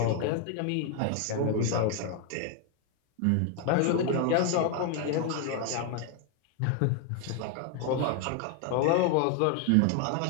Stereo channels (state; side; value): different; both; correlation 0.01